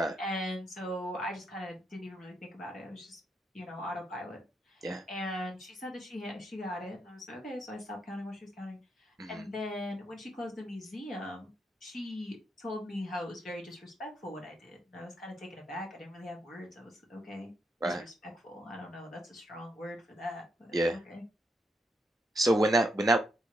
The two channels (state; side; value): normal; both; correlation 0.79